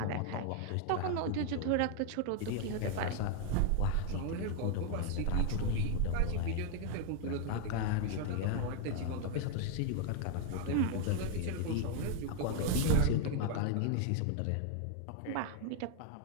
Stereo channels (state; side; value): different; both; correlation 0.00